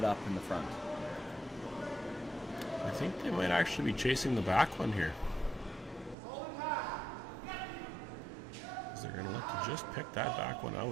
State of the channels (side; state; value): left; drops out; at 6.2 s